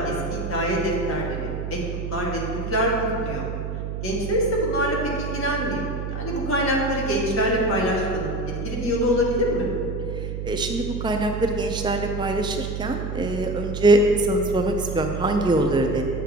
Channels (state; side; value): noise; right; hum, 5 dB below the sound